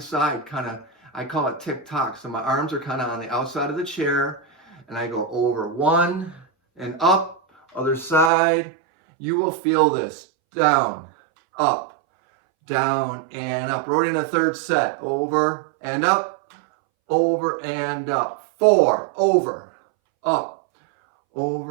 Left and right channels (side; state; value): left; drops out; at 8.3 s